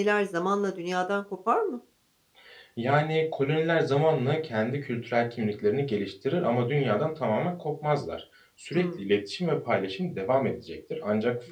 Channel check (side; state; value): both; identical; correlation 1.00